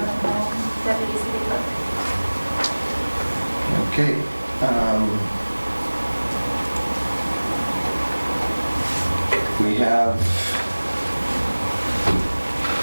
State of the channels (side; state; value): both; inverted; correlation -1.00